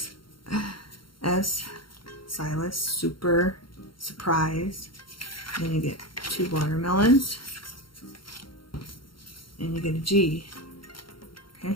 S. Silas, super, surprise. Then you get 2 watermelons. And you get a G. Okay.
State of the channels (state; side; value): late; right; 0.73 ms